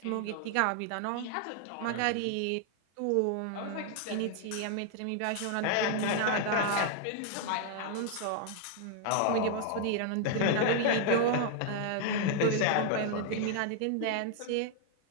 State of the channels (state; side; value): different; both; correlation 0.00